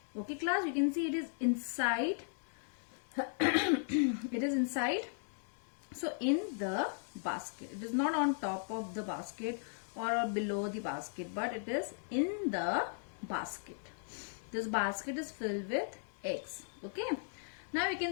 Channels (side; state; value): right; silent; digital silence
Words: Okay class, you can see it is inside. It is inside. So in the basket. It is not on top of the basket or below the basket, but it is in the basket. This basket is filled with eggs. Okay. Now you